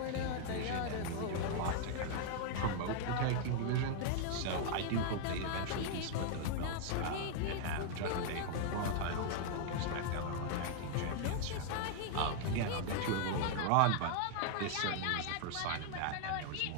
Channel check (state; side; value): different; both; correlation 0.00